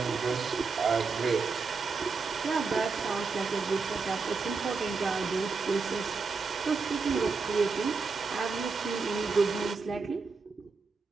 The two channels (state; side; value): quieter; left; 4.6 dB